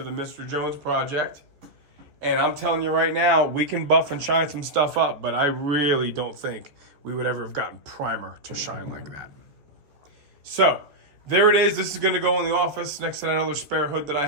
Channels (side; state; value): left; late; 14 ms